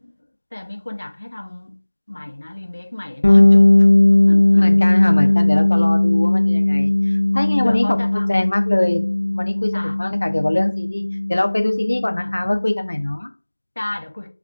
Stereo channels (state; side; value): inverted; both; correlation -1.00